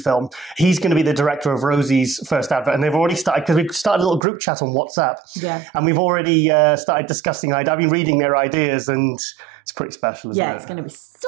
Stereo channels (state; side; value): drops out; left; at 4.2 s